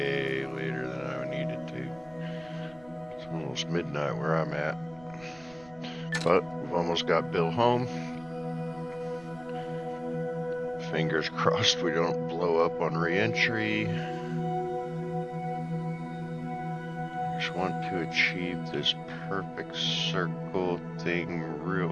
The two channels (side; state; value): right; noise; rumble, 22 dB below the sound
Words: later than I needed to. It's almost midnight where I'm at. But we've almost got Bill home. Fingers crossed we don't blow up on re-entry. Just want to achieve this perfect circle thing